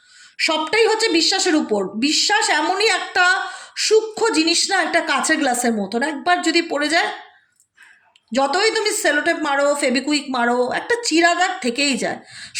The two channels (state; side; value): identical; both; correlation 1.00